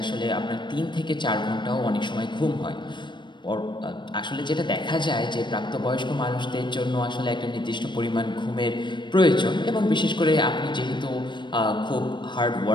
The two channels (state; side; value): late; right; 0.22 ms